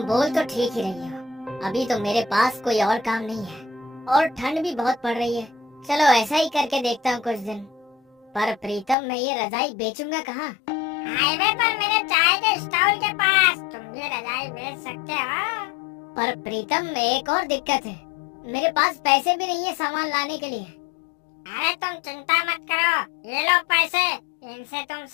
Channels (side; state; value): right; drops out; at 9.0 s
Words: बोल तो ठीक ही रही हो, अभी तो मेरे पास कोई और काम नहीं है और ठंड भी बहुत पड़ रही है। चलो ऐसा ही करके देखता हूँ कुछ दिन। पर प्रीतम, मैं ये रजाई बेचूंगा कहाँ? हाईवे पर मेरे चाय के स्टॉल के पास तुम ये रजाई बेच सकते हो। पर प्रीतम, एक और दिक्कत है, मेरे पास पैसे भी नहीं है सामान लाने के लिए। अरे तुम चिंता मत करो, ये लो पैसे, इनसे तुम